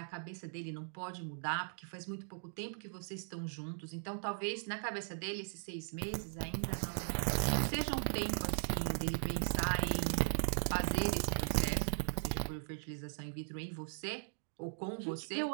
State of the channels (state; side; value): silent; left; digital silence